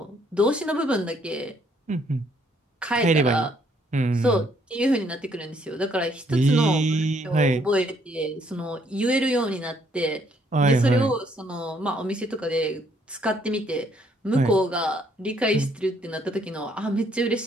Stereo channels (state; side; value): normal; both; correlation 0.68